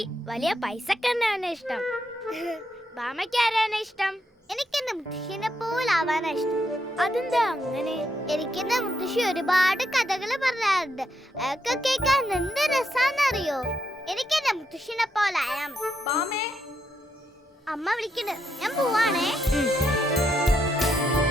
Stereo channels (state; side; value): normal; both; correlation 0.79